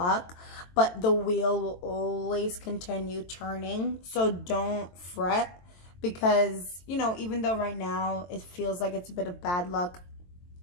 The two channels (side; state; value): right; late; 23 ms